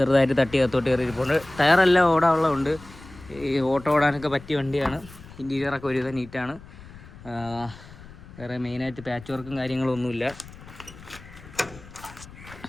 തട്ടി അകത്തോട്ട് കയറിയിരിപ്പുണ്ട്. ടയറെല്ലാം ഓടാനുള്ളതുണ്ട്. ഈ ഓട്ടോ ഓടാനൊക്കെ പറ്റിയ വണ്ടിയാണ്. ഇൻറ്റീരിയറൊക്കെ ഒരുവിധം നീറ്റാണ്. വേറെ മെയിനായിട്ട് പാച്ച് വർക്കും കാര്യങ്ങളൊന്നുമില്ല.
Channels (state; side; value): noise; left; rumble, 18 dB below the sound